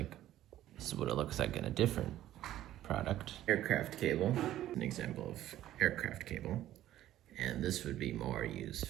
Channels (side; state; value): left; quieter; 13.2 dB